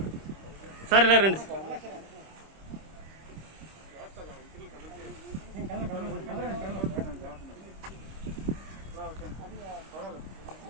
sir ఇలా రండి.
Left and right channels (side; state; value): left; late; 26 ms